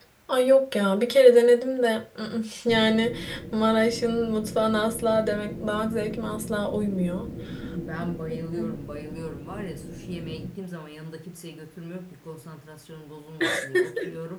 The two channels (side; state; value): both; identical; correlation 1.00